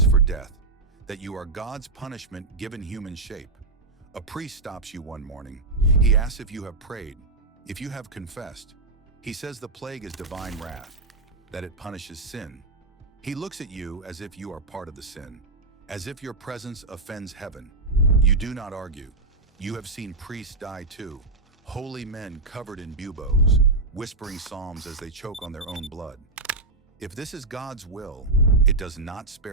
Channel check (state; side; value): quieter; left; 3.4 dB